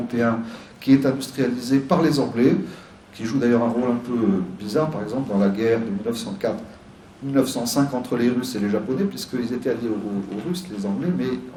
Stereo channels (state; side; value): identical; both; correlation 1.00